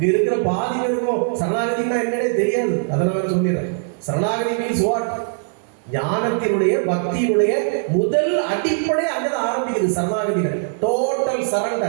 இருக்கிற பாதி பேருக்கும் சரணாகதினா என்னன்னே தெரியாது. அதனால சொல்லிடுறேன். சரணாகதி மீன்ஸ் வாட்? ஞானத்தினுடைய பக்தியினுடைய முதல் அடிப்படை அங்கதான் ஆரம்பிக்குது. சரணாகதியில டோட்டல்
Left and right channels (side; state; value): left; silent; 57 dB below the other